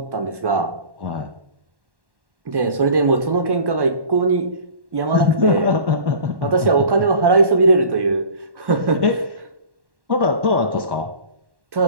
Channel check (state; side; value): late; left; 1.1 ms